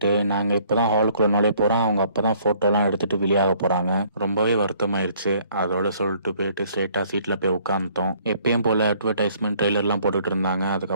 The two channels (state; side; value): inverted; both; correlation -0.62